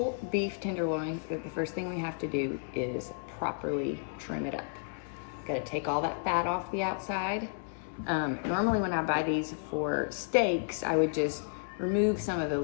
beef tenderloin. The first thing we have to do is properly trim it up. Got to take all that fat off the outside. Normally when I buy these for steaks, I would just remove some of the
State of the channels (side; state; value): right; silent; digital silence